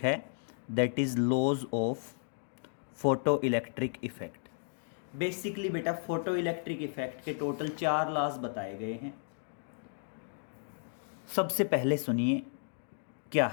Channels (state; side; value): silent; right; digital silence